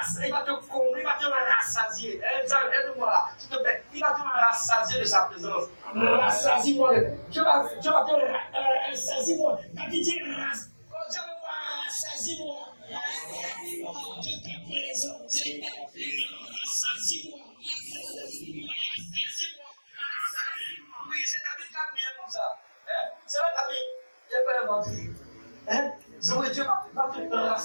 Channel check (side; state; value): both; inverted; correlation -1.00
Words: Il va te combler, il va te rassasier. Aide-moi là, s'il te plaît. Il va te rassasier de sa présence. Rassasie-moi. Dieu va te rassasier-moi. Quand il dit rassasie-moi. De ta présence. Rassasie-moi. Oui, c'est David qui a prié comme ça. C'est là David. J'ai pas inventé. Dieu va te